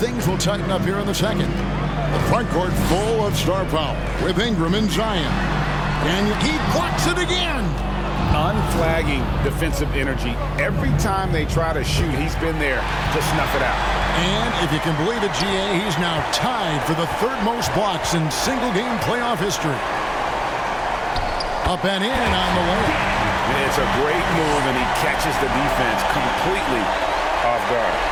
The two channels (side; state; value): both; identical; correlation 1.00